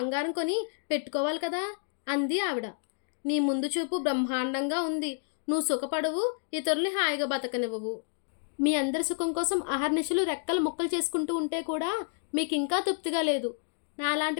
కొని పెట్టుకోవాలి కదా అంది ఆవిడ. నీ ముందు చూపు బ్రహ్మాండంగా ఉంది. నువ్వు సుఖపడవు, ఇతరుల్ని హాయిగా బతకనివ్వవు. మీ అందరి సుఖం కోసం అహర్నిశలు రెక్కలు ముక్కలు చేసుకుంటూ ఉంటే కూడా మీకు ఇంకా తృప్తిగా లేదు.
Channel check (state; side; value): silent; right; digital silence